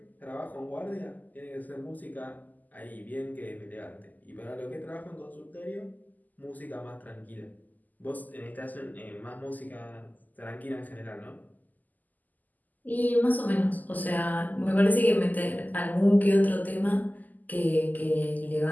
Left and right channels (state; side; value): late; right; 0.082 ms